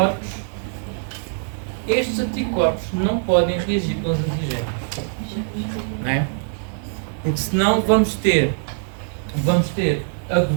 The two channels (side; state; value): left; silent; 64 dB below the other